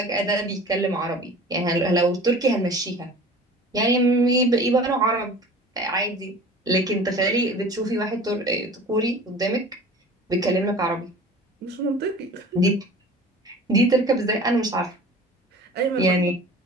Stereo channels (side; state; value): both; normal; correlation 0.42